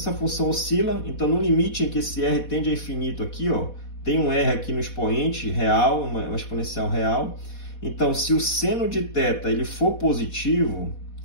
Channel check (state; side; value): late; right; 4.1 ms